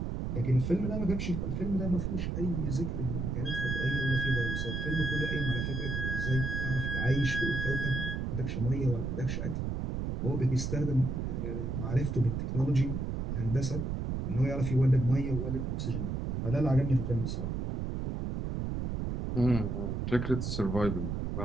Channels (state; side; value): noise; right; rumble, 2 dB below the sound